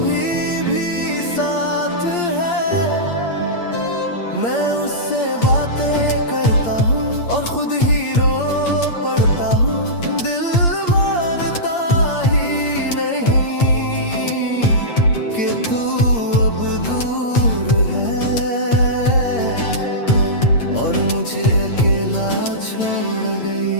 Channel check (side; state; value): right; late; 8.7 ms